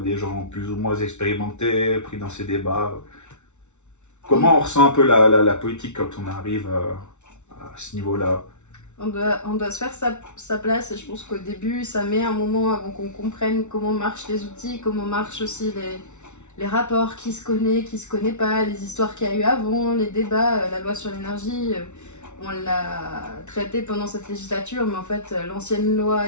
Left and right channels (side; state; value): right; late; 0.82 ms